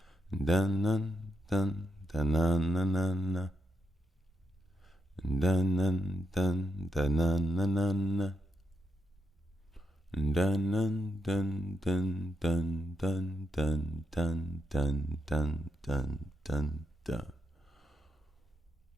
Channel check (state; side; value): normal; both; correlation 0.83